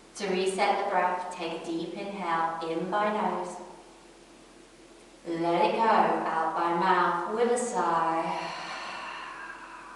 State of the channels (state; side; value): identical; both; correlation 1.00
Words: To reset the breath, take a deep inhale in by nose. Let it go out by mouth with a sigh.